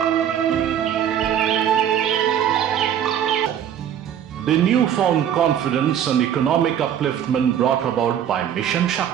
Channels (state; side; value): quieter; left; 9.7 dB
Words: The newfound confidence and economic upliftment brought about by Mission